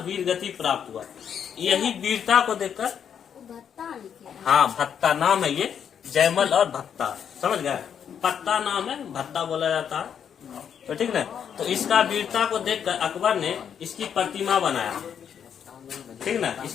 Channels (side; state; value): right; quieter; 8.1 dB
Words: वीर गति प्राप्त हुआ। यही वीरता को देखकर, हाँ भत्ता नाम है ये, जयमल और भत्ता, समझ गए? पत्ता नाम है, भत्ता बोला जाता है, तो ठीक ना। तो इसका वीरता को देखकर अकबर ने इसकी प्रतिमा बनाया, ठीक ना।